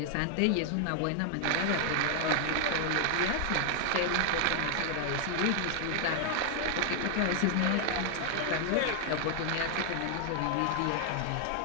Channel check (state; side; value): different; both; correlation 0.00